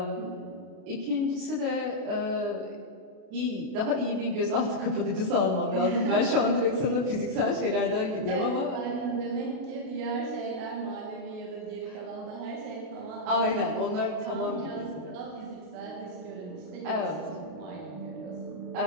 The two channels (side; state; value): left; late; 32 ms